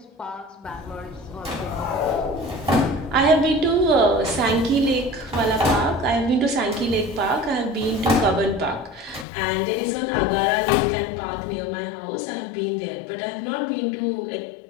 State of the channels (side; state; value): right; drops out; at 9.2 s